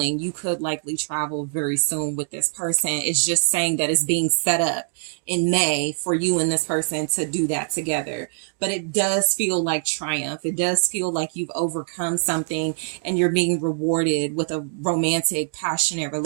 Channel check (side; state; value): left; silent; digital silence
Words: you could likely travel very soon with this person. It's just saying that it's being set up in May for you and this person to do that together. But it does feel like triumph. It does feel like you've overcome something and you're being rewarded with a romantic, passionate